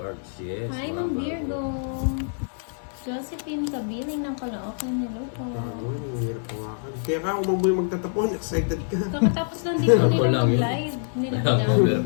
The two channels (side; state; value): right; silent; digital silence